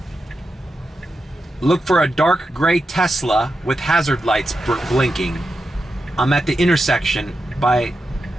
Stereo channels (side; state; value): both; normal; correlation 0.88